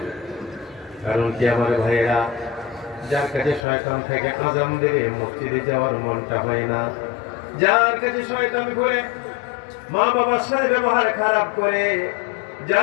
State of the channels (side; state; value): right; drops out; at 3.7 s